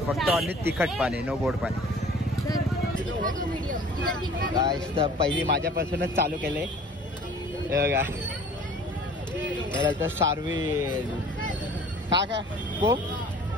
फक्त ऑनली तिखट पाणी, नो गोड पाणी. गाईस तर पहिली माझ्यापासूनच चालू केले. हे बघा तर सार्विल का काय कोक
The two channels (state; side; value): normal; both; correlation 0.48